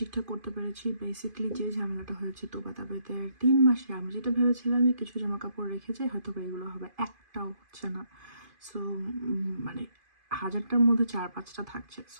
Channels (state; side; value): late; left; 2.5 ms